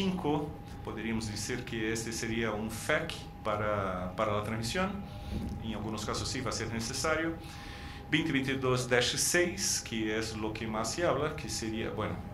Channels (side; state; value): both; identical; correlation 1.00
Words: podríamos decir que este sería un FEC para la transmisión, en algunos casos sí va a ser necesario. 2022-6, que es lo que más se habla, que sería, bueno,